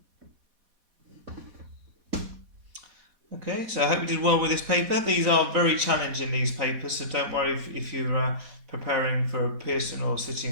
Okay, so I hope you did well with this paper. These are very challenging, these papers, so don't worry if you're preparing for Pearson or City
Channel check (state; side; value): late; left; 4.1 ms